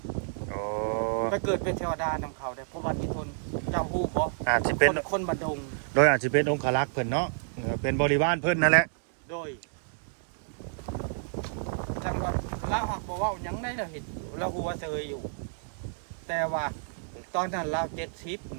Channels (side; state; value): left; silent; digital silence